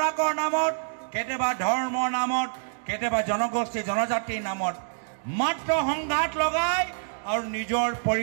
নামত, কেতিয়াবা ধৰ্মৰ নামত, কেতিয়াবা জনগোষ্ঠী জনজাতিৰ নামত মাত্ৰ সংঘাত লগাই আৰু নিজৰ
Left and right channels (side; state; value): left; silent; digital silence